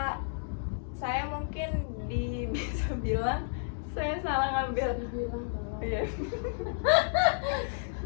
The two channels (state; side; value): silent; right; digital silence